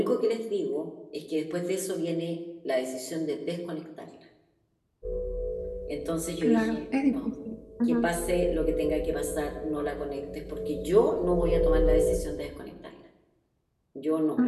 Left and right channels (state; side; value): identical; both; correlation 1.00